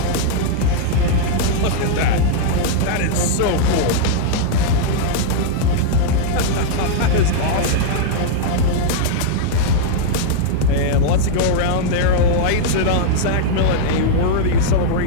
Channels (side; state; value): both; different; correlation -0.01